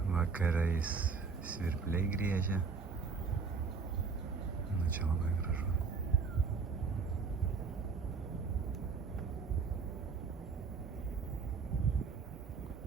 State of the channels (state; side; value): quieter; left; 5.3 dB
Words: Vakarais svirpliai griežia.